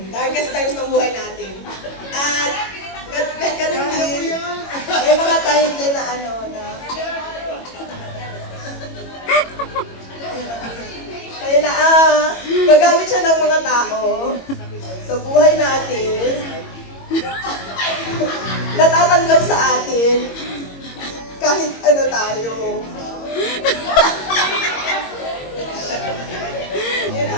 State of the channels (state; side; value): late; right; 22 ms